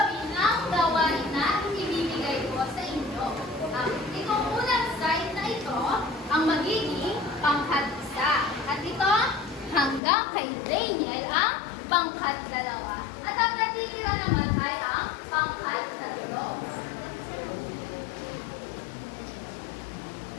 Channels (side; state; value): right; drops out; at 10.0 s